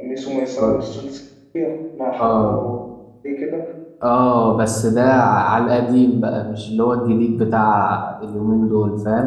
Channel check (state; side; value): identical; both; correlation 1.00